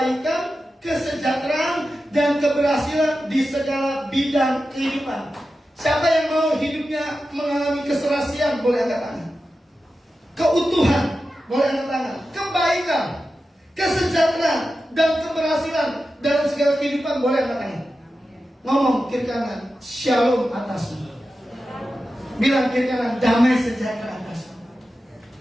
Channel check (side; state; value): both; normal; correlation 0.92